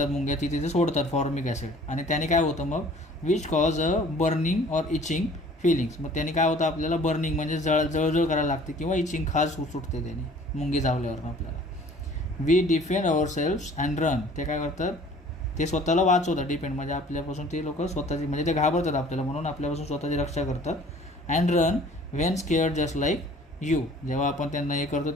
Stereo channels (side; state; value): both; normal; correlation 0.51